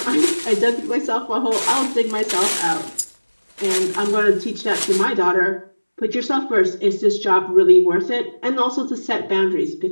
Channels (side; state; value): both; inverted; correlation -1.00